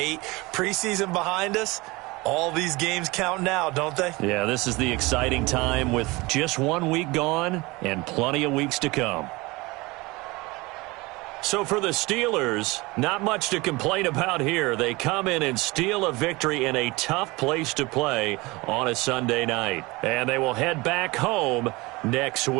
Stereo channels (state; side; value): quieter; left; 23.1 dB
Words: Preseason behind us. All these games count now, don't they? Yeah, this is the exciting time with just 1 week gone and plenty of weeks to come. So for the Steelers, not much to complain about here. They come in and steal a victory in a tough place to play on a Sunday night. And they will head back home next